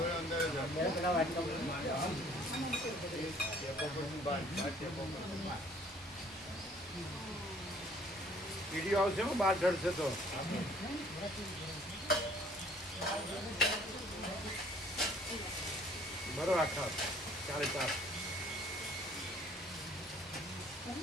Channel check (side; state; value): both; normal; correlation 0.57